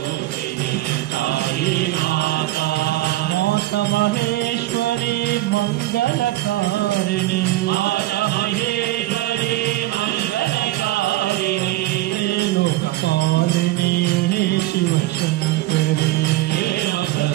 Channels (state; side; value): quieter; left; 16.7 dB